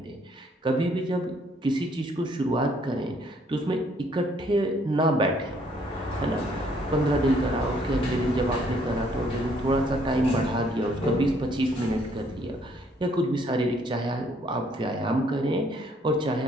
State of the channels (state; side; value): normal; both; correlation 0.66